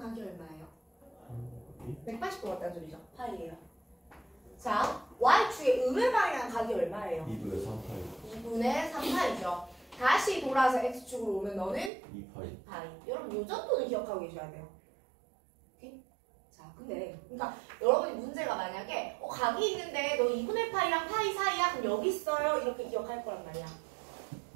얼마예요? 180도 같다는 소리죠. 파이예요. 자, Y축의 음의 방향 각이 얼마예요? 2분의 3파이. 2분의 3파이죠. 다시 돌아서 x축으로 오면 너는 2파이. 파이. 여러분 요 정도는 기억하고 계셔야 돼요. 오케이? 자, 근데 그러니까 여러분이 문제가 만약에 각이 있는데 너 2분의 파이랑 파이 사이야? 그럼 여기 있어요. 이렇게 기억할 거란 말이야.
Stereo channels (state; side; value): drops out; left; at 11.9 s